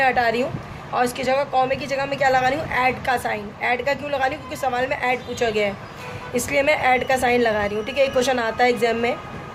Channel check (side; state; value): both; identical; correlation 1.00